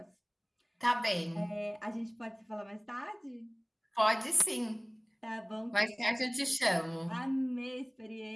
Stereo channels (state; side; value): identical; both; correlation 1.00